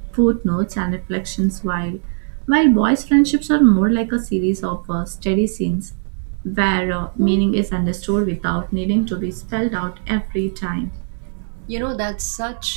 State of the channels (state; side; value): silent; left; digital silence